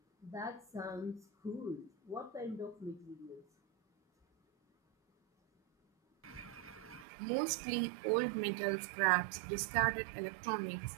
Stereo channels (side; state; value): left; drops out; at 7.1 s